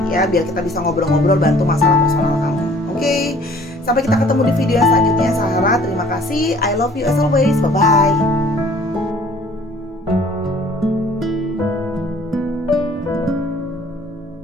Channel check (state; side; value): normal; both; correlation 0.54